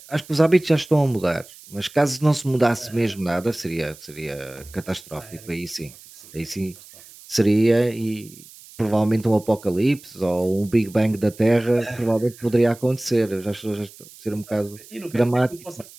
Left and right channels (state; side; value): noise; right; hiss, 21 dB below the sound